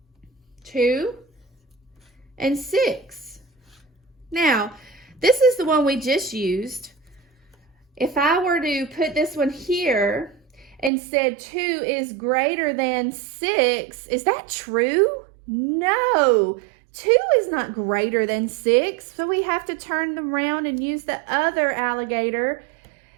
2 and 6. Now, this is the one we just used. If I were to put this one here and said 2 is greater than 6, is that true? No, 2 is not greater than 6. So we have to turn them around and use the other alligator.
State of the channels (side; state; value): left; drops out; at 10.9 s